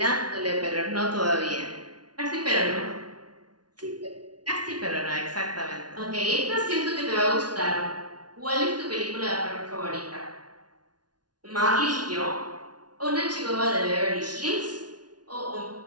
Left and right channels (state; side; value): late; left; 0.69 ms